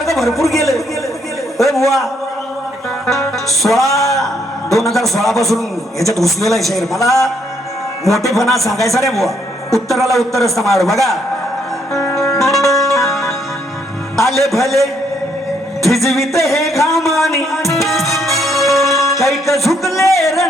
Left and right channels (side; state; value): both; normal; correlation 0.71